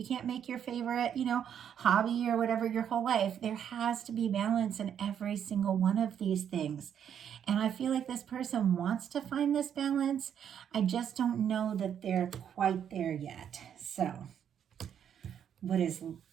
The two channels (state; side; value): quieter; left; 8.8 dB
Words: can't make your favorite, hobby or whatever your whole life. There has to be balance in every single one of these things. And I feel like this person wants to find this balance. I just don't know that they're quite there yet. So, what is